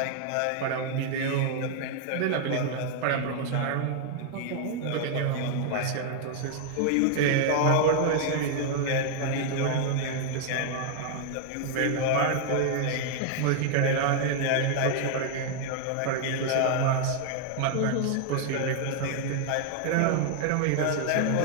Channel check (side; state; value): both; different; correlation 0.00